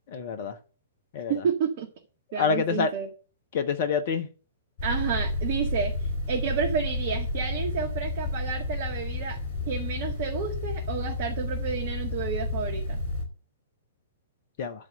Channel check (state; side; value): inverted; both; correlation -0.38